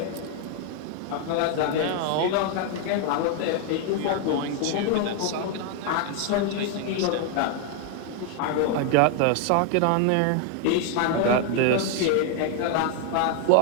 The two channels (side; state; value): both; different; correlation 0.01